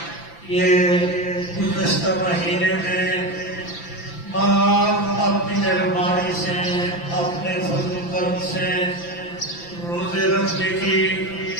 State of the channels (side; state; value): right; late; 5.9 ms